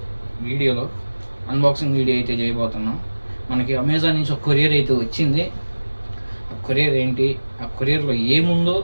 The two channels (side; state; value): both; inverted; correlation -1.00